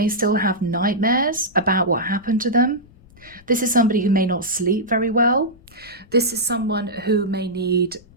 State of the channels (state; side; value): noise; left; rumble, 26 dB below the sound